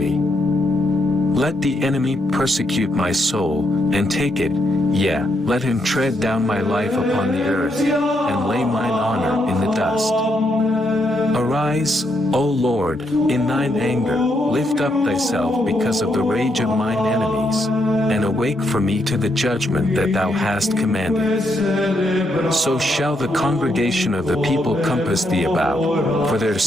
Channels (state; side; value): normal; both; correlation 0.78